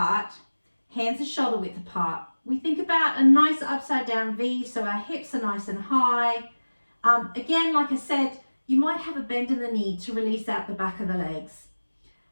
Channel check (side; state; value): both; inverted; correlation -1.00